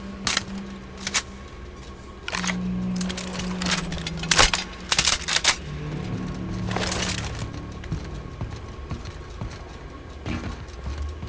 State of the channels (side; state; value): both; identical; correlation 1.00